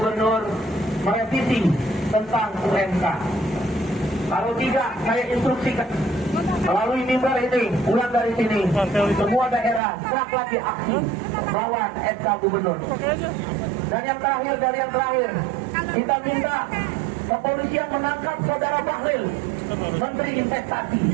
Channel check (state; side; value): drops out; left; at 9.8 s